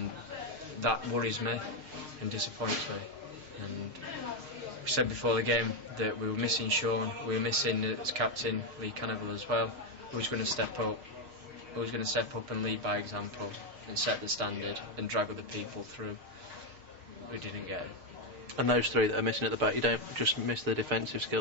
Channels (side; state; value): left; late; 6.4 ms